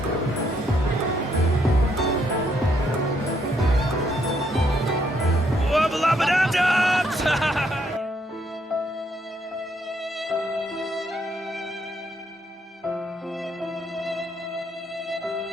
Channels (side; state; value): both; normal; correlation 0.72